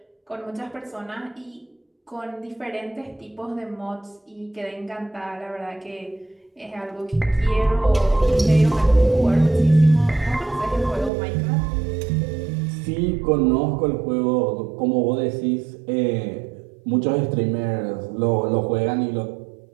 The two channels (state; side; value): drops out; left; at 11.1 s